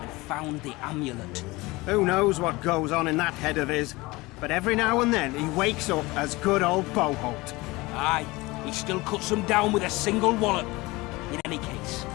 found the amulet. who knows what goes on in that head of his. But every now and then he wakes up as good old Boholt. Aye, he still cuts them down with a single wallop. In any case,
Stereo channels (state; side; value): quieter; right; 21.9 dB